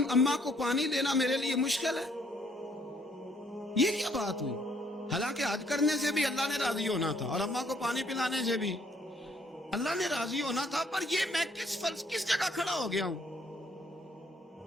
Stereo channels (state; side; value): normal; both; correlation 0.66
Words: اماں کو پانی دینا میرے لیے مشکل ہے. یہ کیا بات ہوئی؟ حالانکہ حج کرنے سے بھی اللہ نے راضی ہونا تھا اور اماں کو پانی پلانے سے بھی اللہ نے راضی ہونا تھا. پر یہ میں کس جگہ کھڑا ہو گیا ہوں